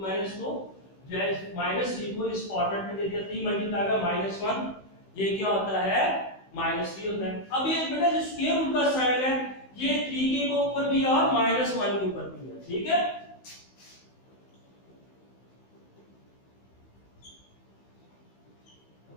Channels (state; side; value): late; right; 16 ms